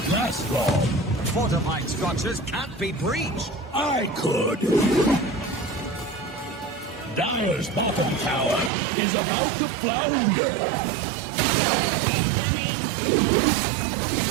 last long. Fortified structures can't be breached. I could. Dire's bottom tower is about to flounder.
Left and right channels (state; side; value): drops out; left; at 8.7 s